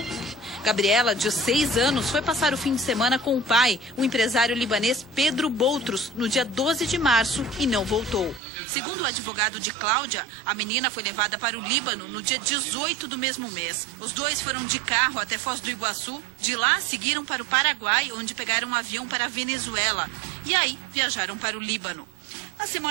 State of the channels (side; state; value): left; drops out; at 8.4 s